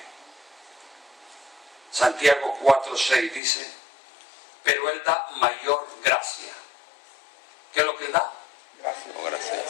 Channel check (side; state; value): right; drops out; at 3.4 s